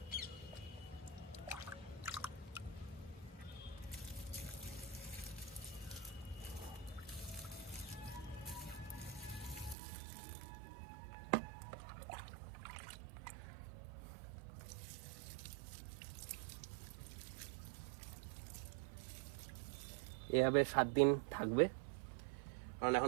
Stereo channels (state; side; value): drops out; left; at 9.8 s